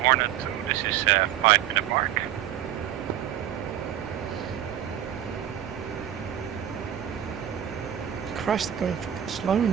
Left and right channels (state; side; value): quieter; left; 11.0 dB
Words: this is 5-minute mark. Christ, they're going fucking slow